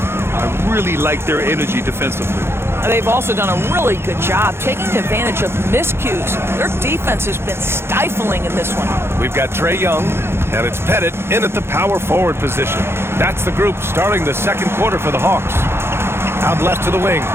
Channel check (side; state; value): left; late; 0.12 ms